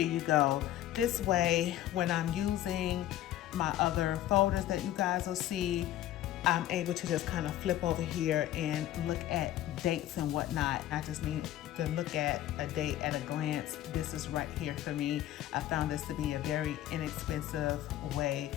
you go. This way, when I'm using my other folders that you guys will see, I'm able to just kind of flip over here and look at dates and whatnot. I just need to look at a date at a glance. This is right here for me. I found this to be a very inexpensive way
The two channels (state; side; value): quieter; right; 13.2 dB